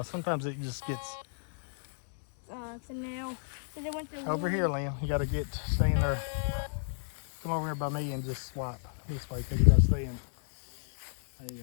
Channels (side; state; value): right; silent; 57 dB below the other